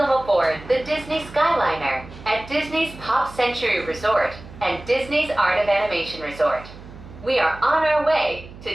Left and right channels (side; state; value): right; noise; hum, 17 dB below the sound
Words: aboard the Disney Skyliner at Disney's Pop Century Resort and Disney's Art of Animation Resort. We are on our way